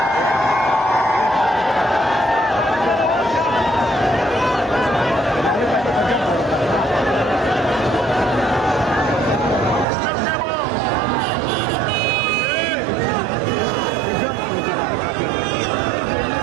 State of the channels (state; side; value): drops out; left; at 9.9 s